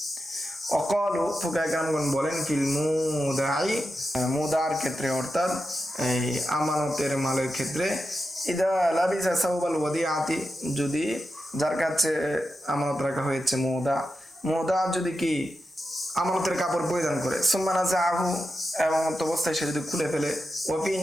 অকালু, ফুকাহায়ে কেরামগণ বলেন ফিল মুদাই, মুদার ক্ষেত্রে অর্থাৎ এই আমানতের মালের ক্ষেত্রে, ইদা লাবিসা সাওবাল ওয়াদিআতি, যদি যার কাছে আমানত রাখা হয়েছে মুদা যদি কি আমানতের কাপড় পরিধান করে, সুম্মা নাযাআহু, এবং অবস্থায় সে যদি খুলে ফেলে, ওয়া ফি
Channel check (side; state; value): both; normal; correlation 0.89